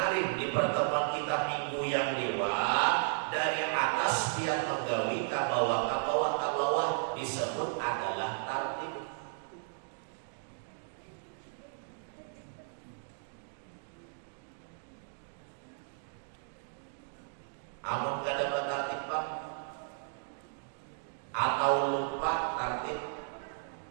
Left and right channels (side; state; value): left; silent; digital silence